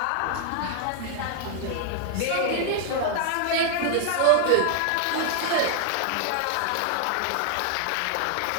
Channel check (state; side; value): different; both; correlation 0.00